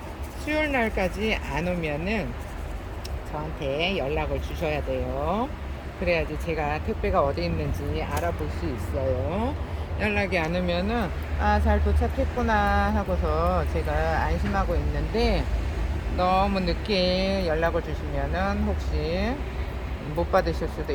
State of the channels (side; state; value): both; identical; correlation 1.00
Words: 수요일 날까지 안 오면은 저한테 연락을 주셔야 돼요. 그래야지 제가 택배가 어디 있는지 알아볼 수 있어요. 연락이 안 오면은 잘 도착했구나 하고서 제가 안심하고 있는데, 너무 늦게 연락을 주시면은 혹시 못 받으실 수도